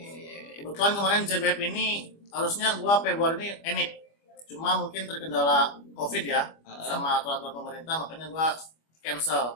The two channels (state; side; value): late; right; 25 ms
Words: Kebetulan kemarin JBF ini harusnya gua Februari ini enip. Cuma mungkin terkendala COVID ya, sama aturan pemerintah, makanya gua